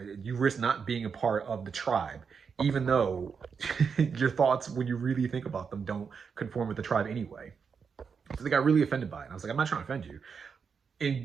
You risk not being a part of the tribe, even though your thoughts, when you really think about them, don't conform with the tribe anyway. So they got really offended by it. And I was like, I'm not trying to offend you.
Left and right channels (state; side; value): quieter; left; 6.0 dB